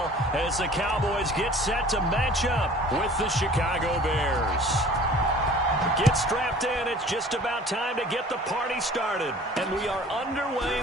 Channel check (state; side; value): normal; both; correlation 0.47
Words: as the Cowboys get set to match up with the Chicago Bears. Get strapped in. It's just about time to get the party started. And we are underway